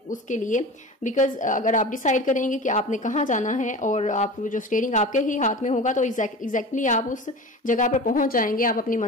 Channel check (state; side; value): normal; both; correlation 0.34